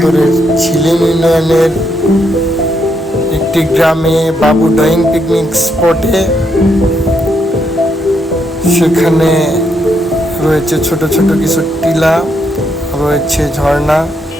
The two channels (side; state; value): both; normal; correlation 0.78